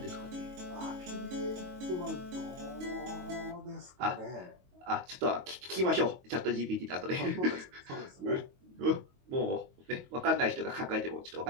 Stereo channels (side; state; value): left; late; 22 ms